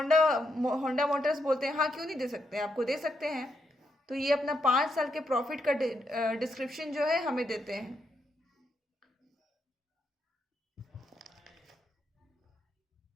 होंडा मोटर्स बोलते हैं हाँ क्यों नहीं दे सकते, आपको दे सकते हैं। तो ये अपना 5 साल के प्रॉफिट का डिस्क्रिप्शन जो है हमें देते हैं।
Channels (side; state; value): both; normal; correlation 0.80